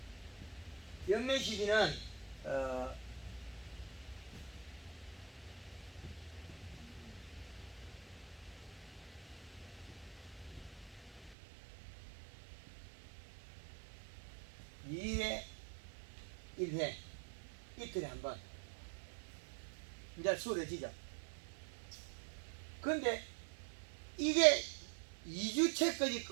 연면 시비는 2회 1회 이틀에 한 번 이제 수월해지죠. 근데 이게 2주째까지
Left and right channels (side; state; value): left; drops out; at 11.4 s